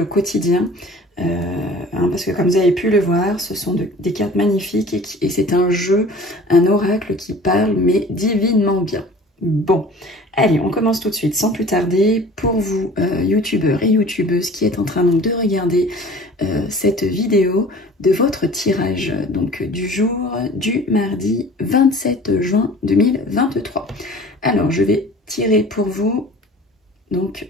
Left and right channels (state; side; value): normal; both; correlation 0.45